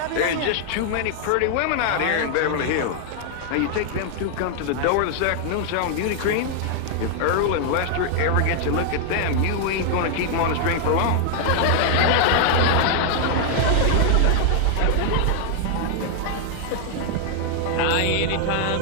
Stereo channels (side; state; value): both; different; correlation 0.00